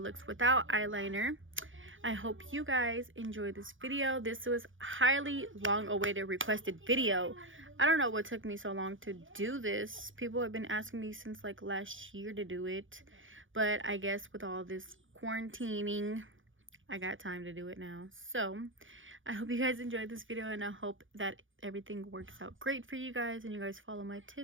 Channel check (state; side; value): late; left; 0.57 ms